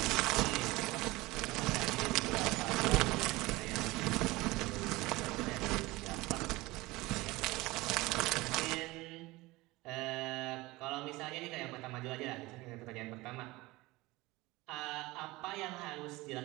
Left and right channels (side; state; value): left; quieter; 20.8 dB